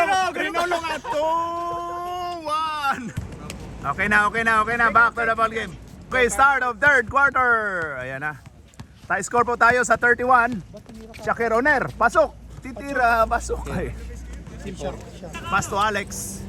Rinulong at 2-1. Okay na. Back to the ball game. Okay, start of third quarter. Ayan na. Tie score po tayo sa 31. Shakir Oner, pasok. Titira, pasok. Ay. Pass to Alex.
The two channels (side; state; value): both; identical; correlation 1.00